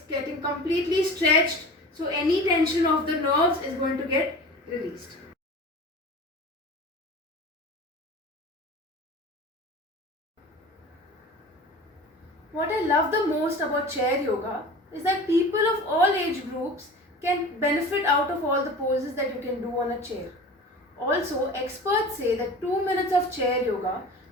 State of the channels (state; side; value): normal; both; correlation 0.37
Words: getting completely stretched, so any tension of the nerves is going to get released. What I love the most about chair yoga is that people of all age groups can benefit out of all the poses that you can do on a chair. Also, experts say that 2 minutes of chair yoga